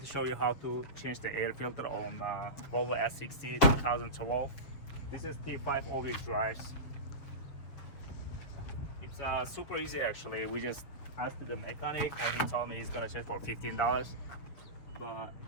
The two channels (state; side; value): late; right; 7.1 ms